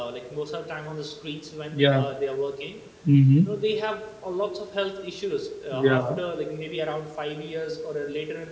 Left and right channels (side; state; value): both; identical; correlation 1.00